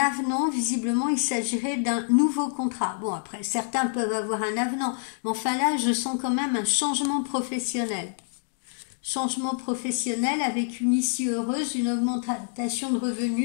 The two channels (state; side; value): silent; right; digital silence